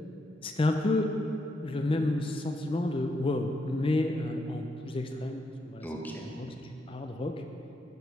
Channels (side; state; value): both; normal; correlation 0.79